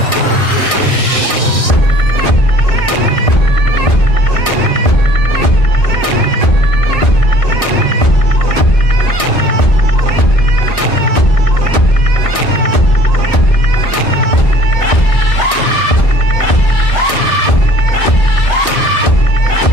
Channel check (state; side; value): late; right; 1.6 ms